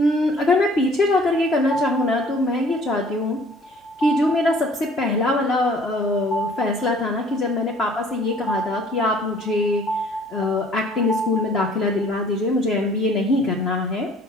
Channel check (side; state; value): both; normal; correlation 0.54